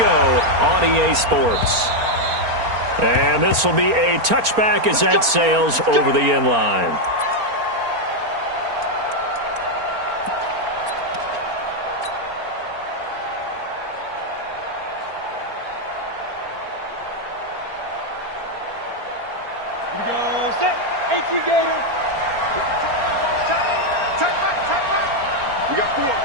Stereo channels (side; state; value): left; late; 4.3 ms